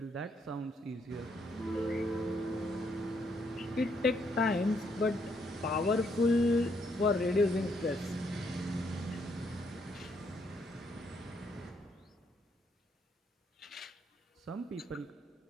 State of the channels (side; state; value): both; normal; correlation 0.73